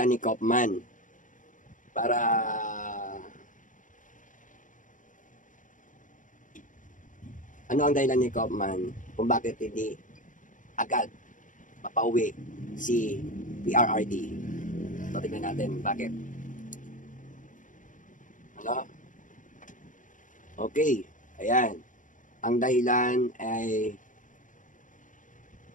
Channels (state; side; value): late; right; 0.38 ms